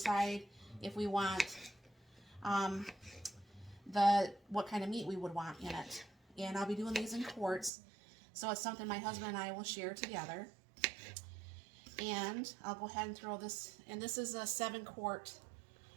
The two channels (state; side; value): drops out; left; at 7.7 s